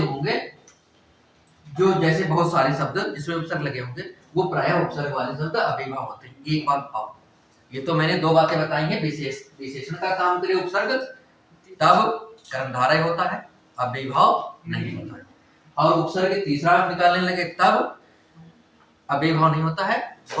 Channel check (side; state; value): both; identical; correlation 1.00